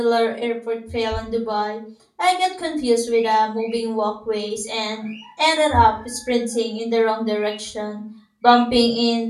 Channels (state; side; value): identical; both; correlation 1.00